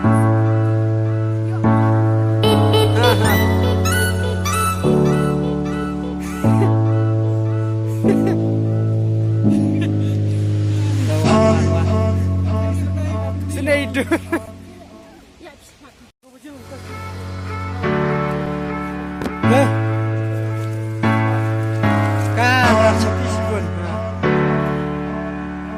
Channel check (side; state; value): both; identical; correlation 1.00